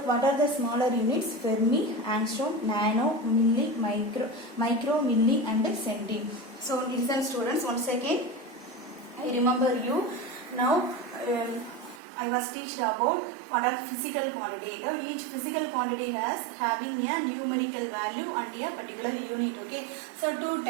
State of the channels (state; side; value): drops out; left; at 12.0 s